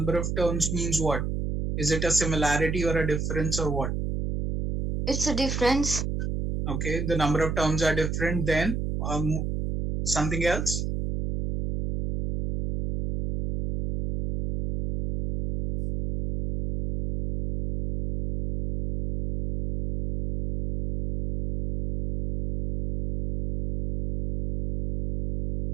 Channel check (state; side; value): noise; right; hum, 2 dB below the sound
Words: of terms means what? Is it a similarity or a difference or what? It's a difference. Okay, the number of terms are different. Then something else?